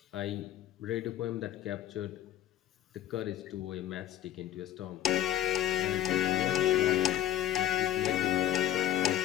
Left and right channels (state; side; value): quieter; right; 12.2 dB